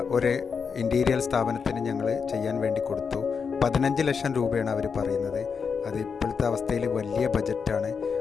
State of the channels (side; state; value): right; quieter; 5.9 dB